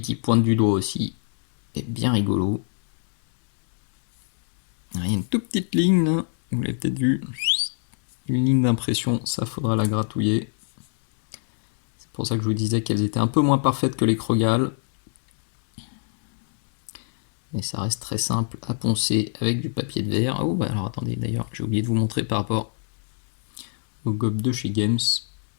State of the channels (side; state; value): right; silent; 63 dB below the other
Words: qui pointe du doigt aussi est bien rigolo. Il y a une toute petite ligne là, vous l'avez peut-être vu. Une ligne d'impression, ça faudra la gratouiller. C'est pour ça que je vous disais qu'elles étaient un peu moins parfaites que les Krogal. Mais ça reste très simple à poncer avec du papier de verre. Oh bah alors attendez, d'ailleurs j'ai oublié de vous montrer par rapport au gob de chez Games.